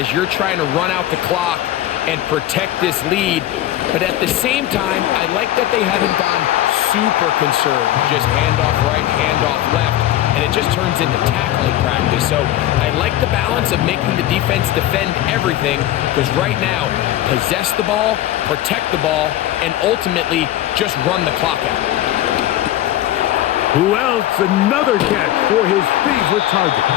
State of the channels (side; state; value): right; quieter; 13.6 dB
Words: you're trying to run out the clock and protect this lead. But at the same time, I like that they haven't gone super concerned. Just handoff right, handoff left, and it just turns into tackling practice. So I like the balance of making the defense defend everything, because right now, possess the ball, protect the ball, and ultimately just run the clock out. Who else? Another catch for his favorite target.